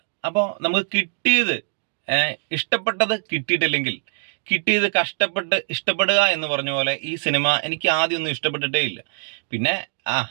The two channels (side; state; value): left; silent; digital silence